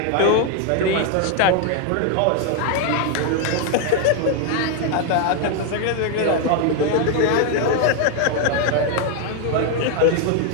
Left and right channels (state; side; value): different; both; correlation 0.01